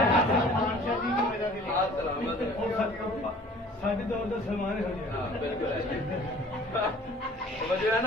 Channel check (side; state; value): both; normal; correlation 0.49